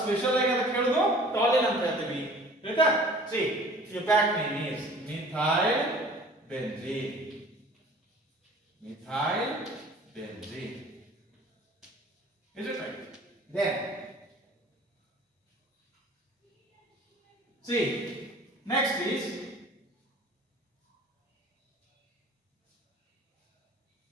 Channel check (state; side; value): normal; both; correlation 0.48